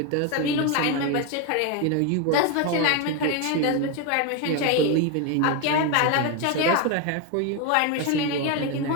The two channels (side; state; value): both; different; correlation 0.02